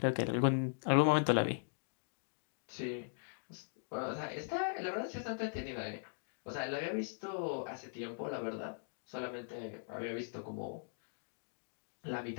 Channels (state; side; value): silent; right; digital silence